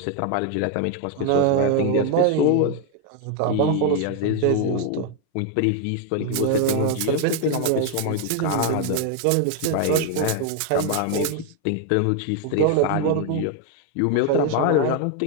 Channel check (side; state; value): both; different; correlation 0.01